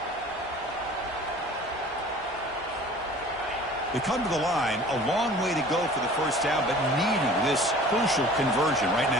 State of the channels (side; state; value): both; normal; correlation 0.46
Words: They come to the line, a long way to go for the first down, but needing this crucial conversion right